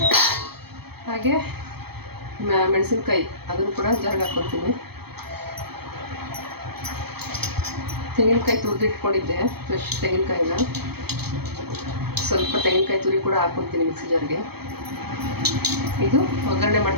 ಹಾಗೆ ಮೆಣಸಿನ್ಕಾಯಿ ಅದನ್ನು ಕೂಡ ಜಾರ್ಗೆ ಹಾಕ್ಕೊತೀನಿ. ತೆಂಗಿನಕಾಯಿ ತುರಿದಿಟ್ಕೊಂಡಿದ್ದೆ, ಫ್ರೆಶ್ ತೆಂಗಿನಕಾಯಿನ. ಸ್ವಲ್ಪ ತೆಂಗಿನಕಾಯಿ ತುರಿ ಕೂಡ ಹಾಕ್ಕೊಡ್ತೀನಿ ಮಿಕ್ಸಿ ಜಾರ್ಗೆ. ಇದು ಒಗ್ಗರಣೆ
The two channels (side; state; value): left; late; 0.97 ms